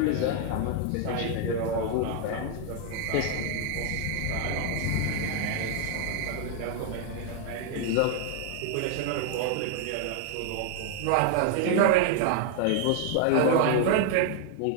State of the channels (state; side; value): different; both; correlation 0.00